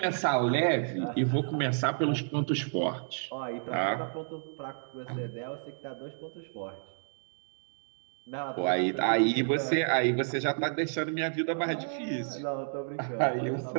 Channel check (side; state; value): left; silent; digital silence